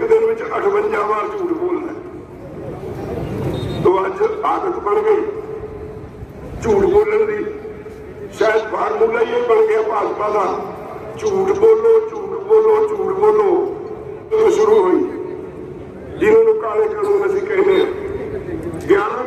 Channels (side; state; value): both; identical; correlation 1.00